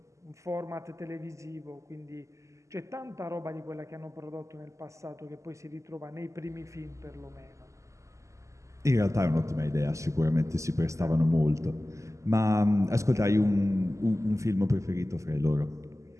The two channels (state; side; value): late; left; 0.15 ms